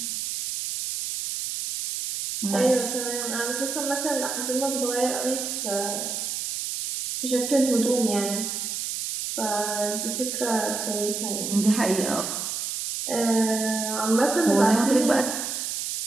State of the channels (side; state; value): right; noise; hiss, 3 dB below the sound